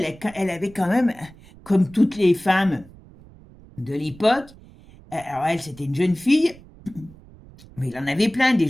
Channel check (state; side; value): noise; right; rumble, 22 dB below the sound